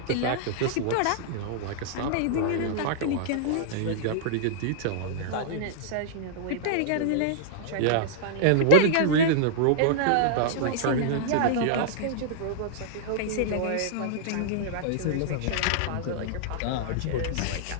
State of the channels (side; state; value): both; different; correlation -0.01